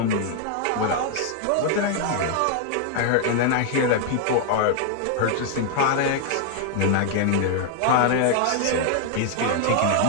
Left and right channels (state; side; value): different; both; correlation 0.00